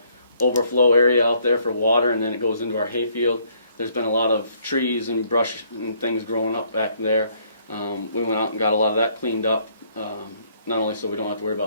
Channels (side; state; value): both; inverted; correlation -0.66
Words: overflow area out there for water, and then it goes into our hayfield. There's been a lot of trees and brush and things growing up back there. We went out and got a lot of that cleaned up, not only so we don't have to worry